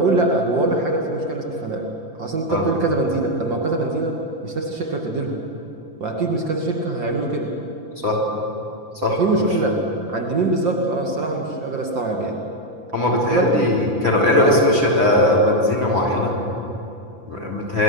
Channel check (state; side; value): late; left; 5.9 ms